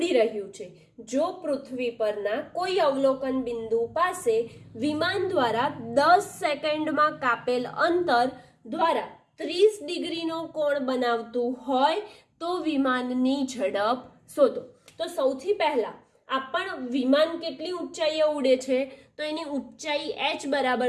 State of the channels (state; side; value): identical; both; correlation 1.00